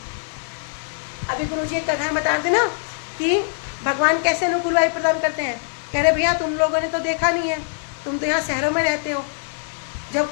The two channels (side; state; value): right; silent; digital silence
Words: अभी गुरुजी एक कथा बता रहे थे ना कि भगवान कैसे अनुकूल वायु प्रदान करते हैं। कह रहे भैया तुम लोगों ने तो देखा नहीं है, तुम तो यहाँ शहरों में रहते हो। जब